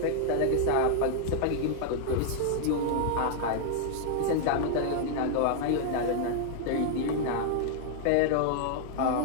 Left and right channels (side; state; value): both; different; correlation -0.01